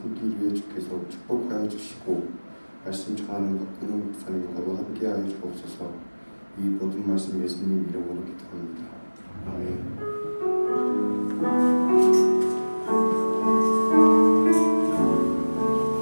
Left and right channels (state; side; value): inverted; both; correlation -1.00